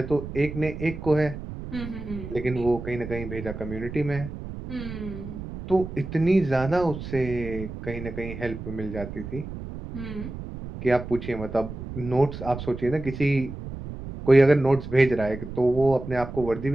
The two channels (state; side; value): noise; right; rumble, 9 dB below the sound